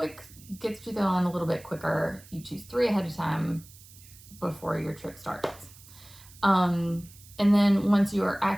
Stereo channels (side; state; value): right; noise; hiss, 22 dB below the sound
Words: gets you on a little bit quicker. You choose 3 ahead of time before your trip starts. And then once you are